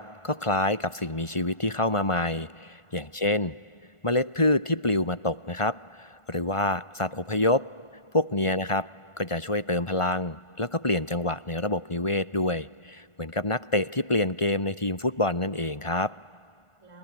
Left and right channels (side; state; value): right; late; 1.5 ms